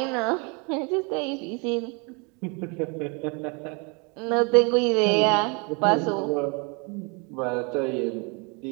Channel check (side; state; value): left; quieter; 32.4 dB